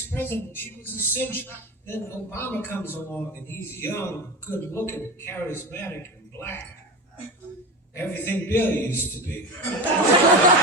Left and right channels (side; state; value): both; normal; correlation 0.24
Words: president. She was a cinch. Then Obama comes along and he's young, good looking, charismatic, and black. Everything Bill used to be.